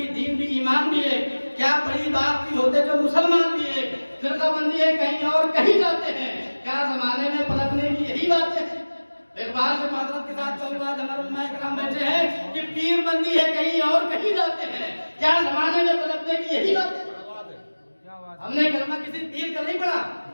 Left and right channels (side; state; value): both; inverted; correlation -1.00